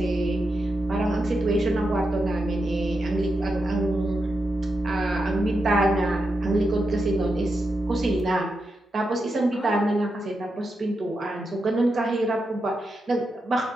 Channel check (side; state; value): both; normal; correlation 0.87